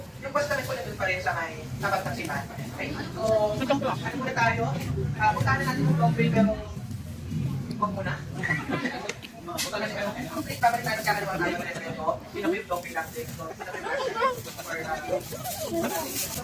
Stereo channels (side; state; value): both; identical; correlation 1.00